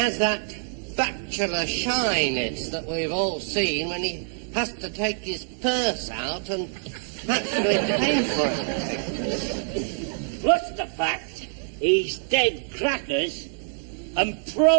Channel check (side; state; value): left; silent; digital silence